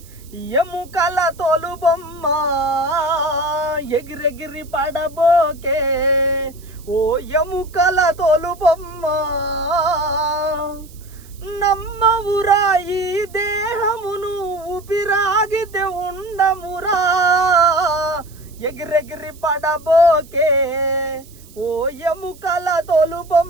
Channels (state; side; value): noise; right; hiss, 24 dB below the sound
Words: ఎముకల తోలుబొమ్మ, ఎగిరెగిరి పడబోకే ఓ ఎముకల తోలుబొమ్మ. నమ్మవురా ఈ దేహమును ఊపిరాగితే ఉండమురా, ఎగిరెగిరి పడబోకే ఓ ఎముకల